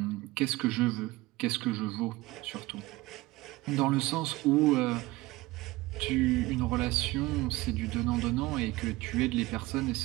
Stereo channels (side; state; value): left; quieter; 20.1 dB